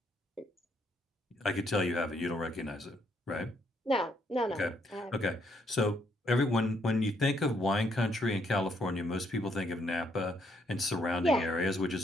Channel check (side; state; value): both; normal; correlation 0.72